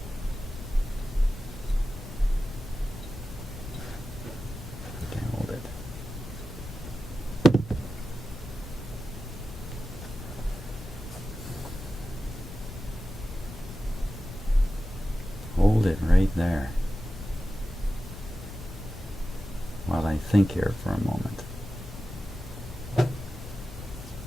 Okay, hold it. Hold it right there while I think here for a moment.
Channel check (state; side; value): normal; both; correlation 0.93